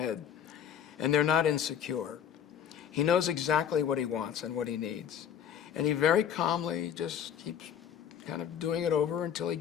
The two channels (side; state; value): right; quieter; 8.8 dB